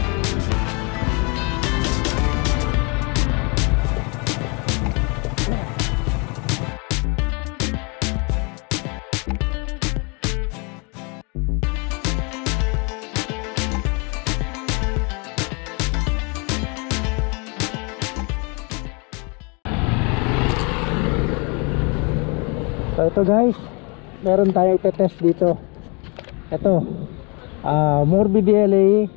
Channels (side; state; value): right; quieter; 31.9 dB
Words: So ito guys, meron tayong test dito. Ito Morbidelli